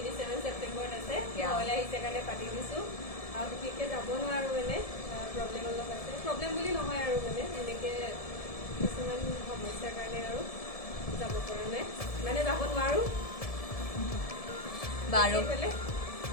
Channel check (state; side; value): late; right; 1.7 ms